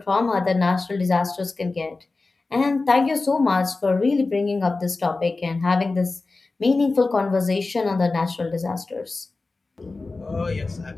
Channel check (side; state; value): right; quieter; 3.6 dB